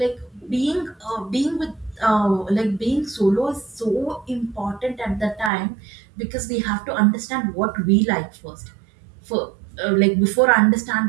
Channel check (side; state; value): left; drops out; at 5.5 s